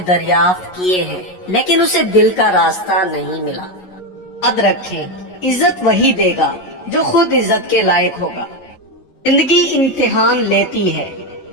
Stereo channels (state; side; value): late; right; 11 ms